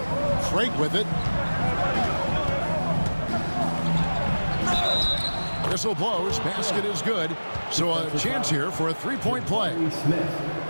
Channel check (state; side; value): inverted; both; correlation -1.00